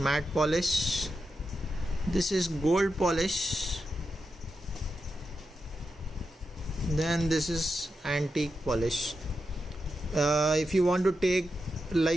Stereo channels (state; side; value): normal; both; correlation 0.88